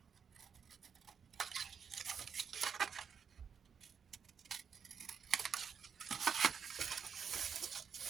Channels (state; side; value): quieter; left; 7.0 dB